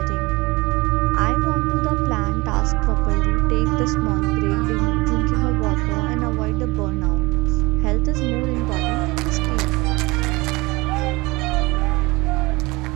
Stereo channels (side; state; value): left; quieter; 22.9 dB